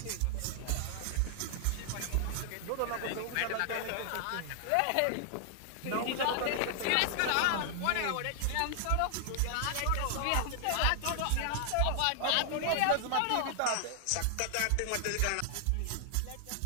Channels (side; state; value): both; different; correlation 0.00